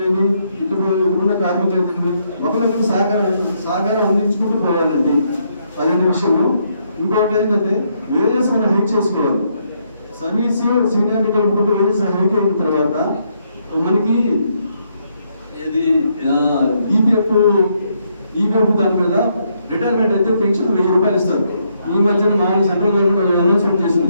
ఇక్కడున్న కార్మికులు అయితేనేమి ఒకరికి సహకారం అందించుకుంటూ పోవాలండి. అదే విషయము. ఇంకొకటి ఏంటంటే వేజెస్ మనం హైక్ చేసుకోవాలి. సర్వీస్ సీనియారిటీ కలిపి వేజెస్ హైక్ అయిన తర్వాత మనకి ఇది ఈపీఎఫ్ దాని మీద రిటైర్మెంట్ అయితే పెన్షన్ 1000 రూపాయలు ఇస్తారు. ఈ మధ్యన మామూలు సెంట్రల్ గవర్నమెంట్ అనౌన్స్మెంట్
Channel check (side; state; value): both; inverted; correlation -0.75